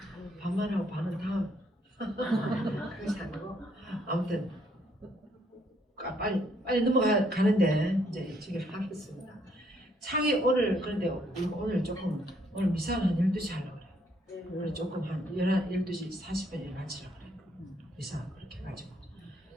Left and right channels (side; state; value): both; normal; correlation 0.69